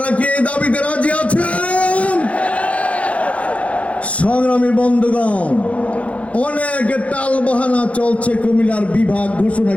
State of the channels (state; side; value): late; right; 0.064 ms